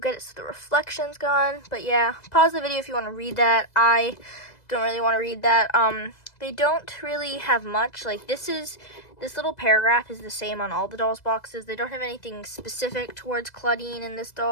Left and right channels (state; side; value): late; right; 2.0 ms